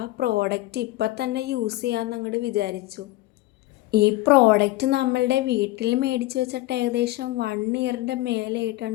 പ്രോഡക്റ്റ് ഇപ്പം തന്നെ യൂസ് ചെയ്യാമെന്ന് അങ്ങോട്ട് വിചാരിച്ചു. ഈ പ്രോഡക്റ്റ് നമ്മളുടെ വീട്ടിൽ മേടിച്ച് വെച്ചിട്ട് ഏകദേശം 1 ഇയറിൻ്റെ മേലെ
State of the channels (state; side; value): quieter; right; 18.1 dB